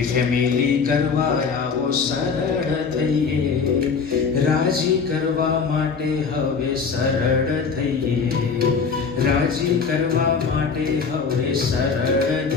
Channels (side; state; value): right; quieter; 5.5 dB